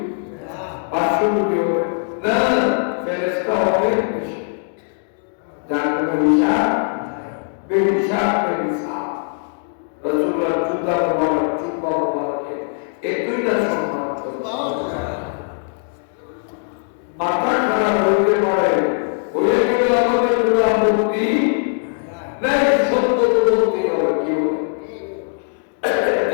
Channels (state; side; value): silent; right; 66 dB below the other